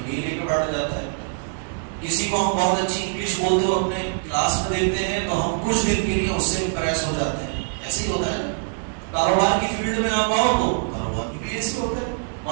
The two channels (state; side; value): silent; left; digital silence